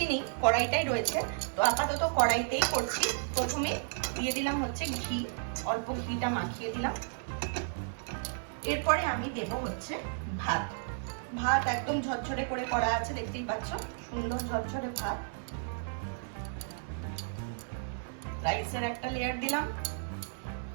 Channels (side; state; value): left; silent; 56 dB below the other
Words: নি, কড়াইটাই রয়েছে, তো আপাতত কড়াইতেই করছি। প্রথমে দিয়ে দিলাম হচ্ছে ঘি, অল্প ঘিটা মাখিয়ে দিলাম। এরপরে আমি দেব হচ্ছে ভাত একদম ঝরঝরে করে করা আছে, দেখতেই পাচ্ছ সুন্দর ঝরঝরে ভাত। রাইসের একটা লেয়ার দিলাম।